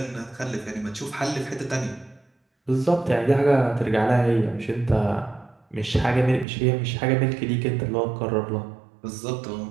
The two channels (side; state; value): left; drops out; at 6.5 s